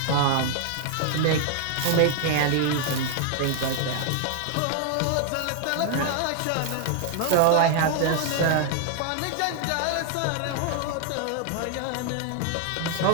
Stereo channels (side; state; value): both; different; correlation 0.00